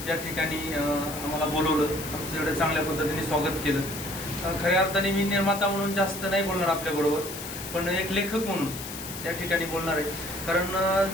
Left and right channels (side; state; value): left; noise; hiss, 9 dB below the sound